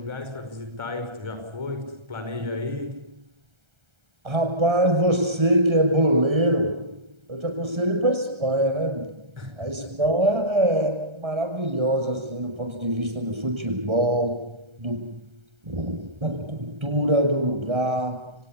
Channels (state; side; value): late; left; 1.3 ms